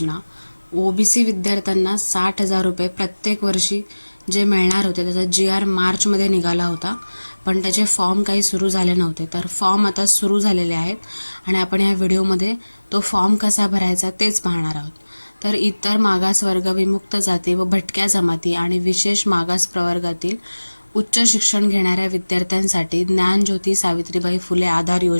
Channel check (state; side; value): inverted; both; correlation -1.00